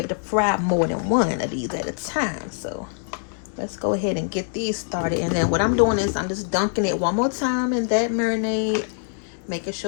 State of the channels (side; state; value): right; silent; 63 dB below the other